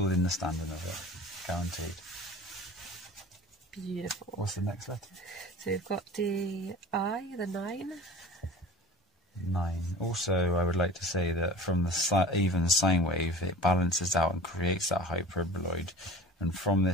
understanding of it, guaranteed. Beautiful. What's the next letter? So we've got the I, the 9. 9. Also, I would like to say that from the even sine wave, it balances out and creates that hyperboloid. And from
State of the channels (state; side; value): normal; both; correlation 0.39